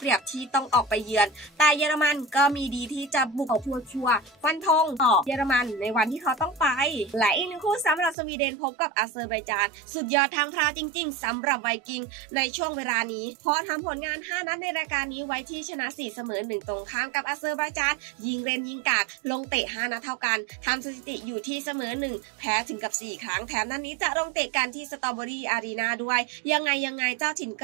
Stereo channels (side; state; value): left; drops out; at 8.2 s